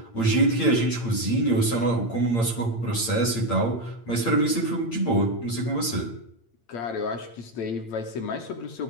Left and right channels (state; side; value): late; right; 8.8 ms